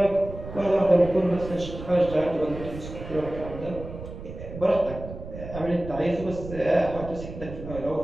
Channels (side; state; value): right; noise; rumble, 11 dB below the sound